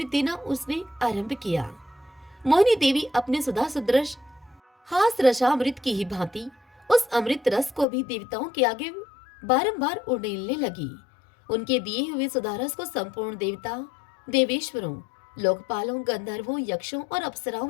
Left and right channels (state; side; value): drops out; right; at 7.9 s